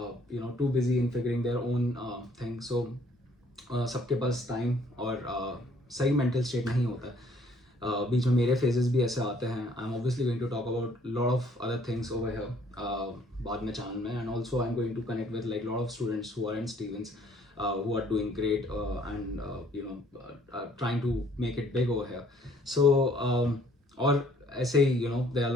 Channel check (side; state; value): both; normal; correlation 0.61